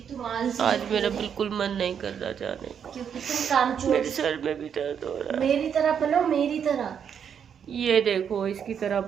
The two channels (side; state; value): left; quieter; 7.8 dB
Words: तुम आलसी आज मेरा बिल्कुल मन नहीं कर रहा जाने का। क्योंकि तुम कामचोर। मेरे सर में भी दर्द हो रहा है। मेरी तरह बनो, मेरी तरह। ये देखो, इसकी तरह